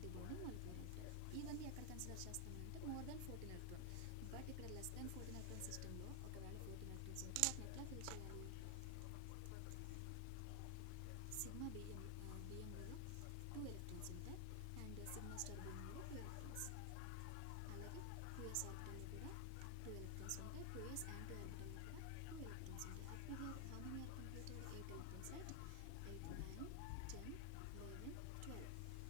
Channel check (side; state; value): both; different; correlation 0.00